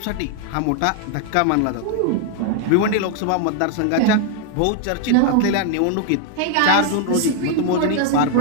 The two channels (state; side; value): different; both; correlation 0.00